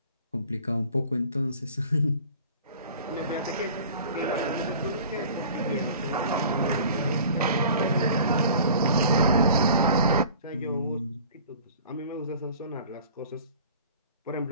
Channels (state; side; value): inverted; both; correlation -0.46